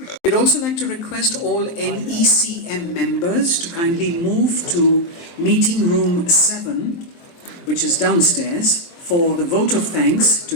We'd also like to request all NECM members to kindly move to meeting room 7, which is downstairs, for the vote of thanks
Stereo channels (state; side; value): late; right; 23 ms